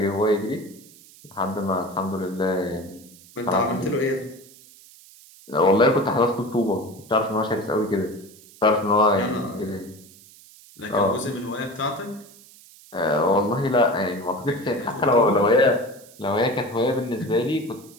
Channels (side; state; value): right; noise; hiss, 23 dB below the sound